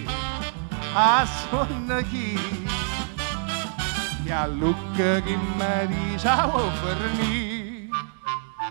a sonno chi, e a lucca chi mi dice a venire,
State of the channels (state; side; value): silent; left; 59 dB below the other